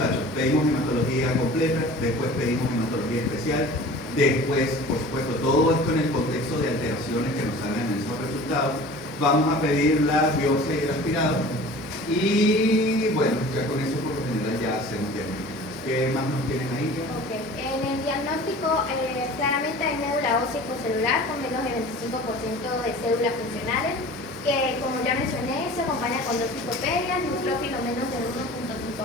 pedimos hematología completa, después pedimos hematología especial, después, por supuesto, todo esto en el contexto de alteraciones que nos salgan en esos resultados. Vamos a pedir la biopsia y el aspirado. Y bueno, ya con eso por lo general ya hacemos diagnósticos. ¿Qué más nos tienen ahí? Okay. En el diagnóstico claramente hay médula ósea celular con menos de 25% de células funcionales. que como ya mencioné, se acompaña con dos citoperias, neutrófilos menos de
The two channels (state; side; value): normal; both; correlation 0.42